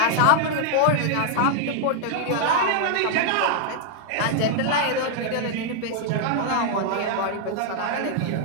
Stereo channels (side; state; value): both; different; correlation 0.00